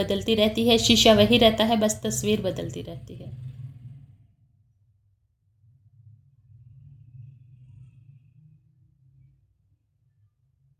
रहती है, शीशा वही रहता है, बस तस्वीर बदलती रहती है।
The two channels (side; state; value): both; identical; correlation 1.00